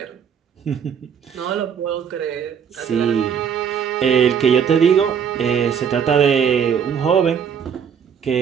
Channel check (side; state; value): left; quieter; 7.6 dB